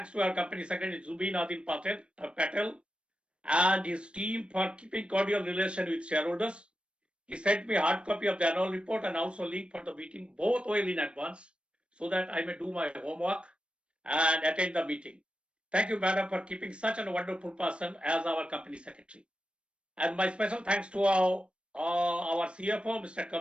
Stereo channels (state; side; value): late; left; 0.057 ms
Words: to our company secretary, Zubin Adil Patel, and his team for keeping cordial relation with shareholders. He sent me a hard copy of the annual report and also link for the meeting, both well in advance, so that I may do my homework and attend the meeting. Thank you, Madam, for keeping such a wonderful person as our company secretary. And my special thanks to our CFO, Mr.